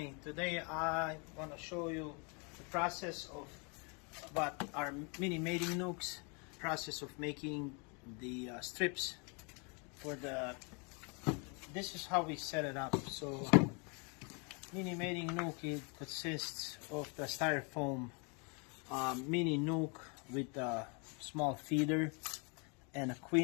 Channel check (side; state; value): right; quieter; 33.8 dB